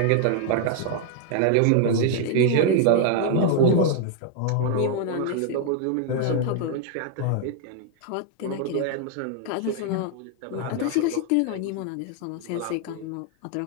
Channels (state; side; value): different; both; correlation 0.00